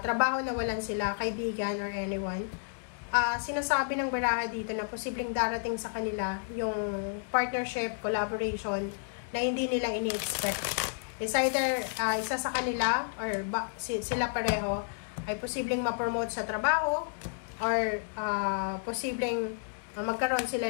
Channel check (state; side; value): silent; right; digital silence